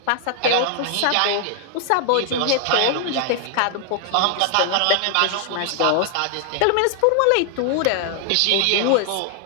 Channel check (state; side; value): different; both; correlation 0.00